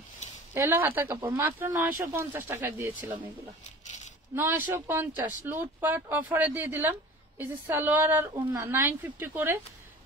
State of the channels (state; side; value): normal; both; correlation 0.41